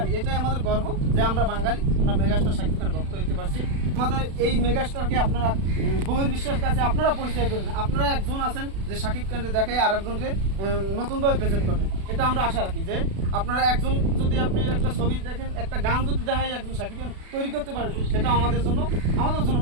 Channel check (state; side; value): late; left; 36 ms